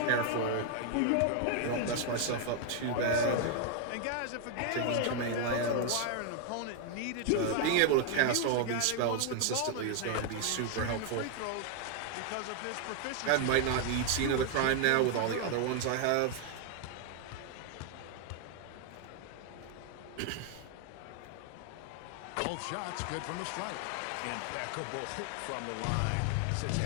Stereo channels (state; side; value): different; both; correlation 0.00